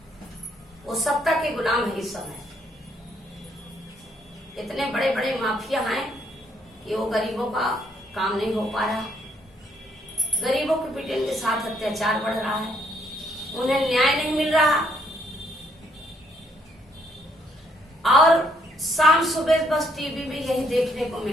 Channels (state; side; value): normal; both; correlation 0.70